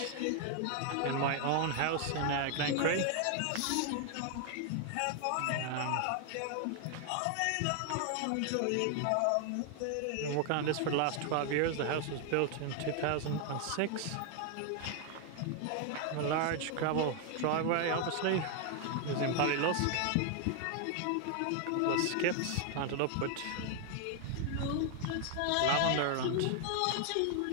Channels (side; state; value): both; different; correlation 0.00